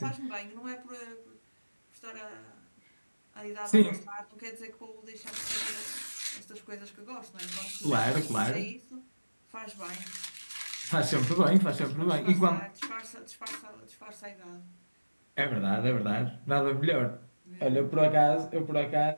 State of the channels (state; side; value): inverted; both; correlation -1.00